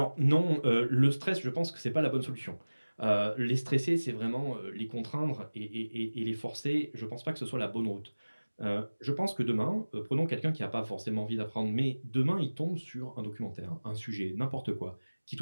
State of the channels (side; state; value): both; inverted; correlation -1.00